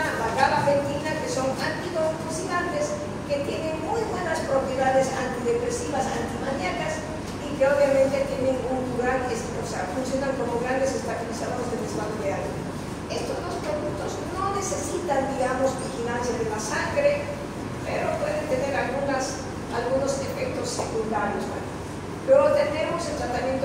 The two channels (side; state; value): both; identical; correlation 1.00